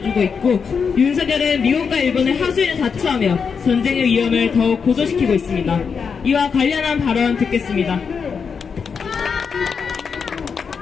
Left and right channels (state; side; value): quieter; right; 6.0 dB